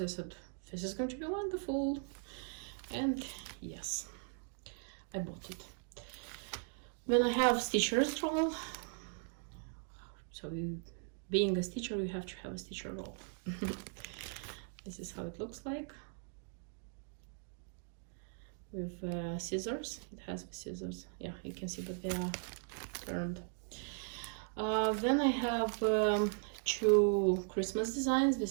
I said, this is going to be wonderful. And yes, I bought it. Then I have stitcher's roll. So being a stitcher, you have to have a stitcher roll. This is how it looks like. With scissors. It has the scissors. Yeah, you can see, but they are turned. Then I have 2 Christmas designs.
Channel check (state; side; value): silent; left; 52 dB below the other